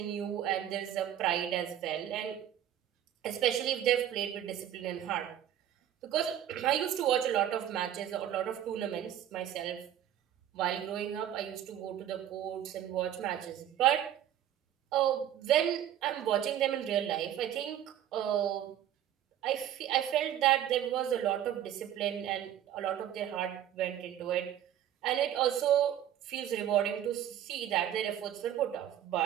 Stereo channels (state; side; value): quieter; left; 10.9 dB